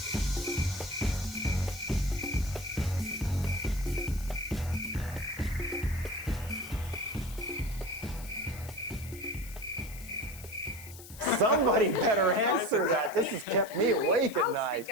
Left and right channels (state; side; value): noise; left; hiss, 17 dB below the sound